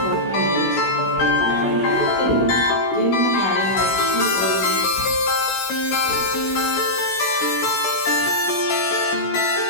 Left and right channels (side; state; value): right; late; 16 ms